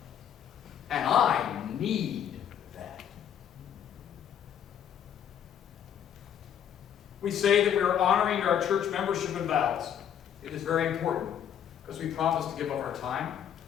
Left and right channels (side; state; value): right; quieter; 9.2 dB